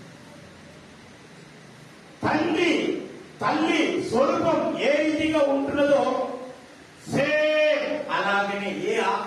తల్లి స్వరూపం ఏ రీతిగా ఉంటున్నదో సేమ్ అలాగనే ఏ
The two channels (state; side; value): identical; both; correlation 1.00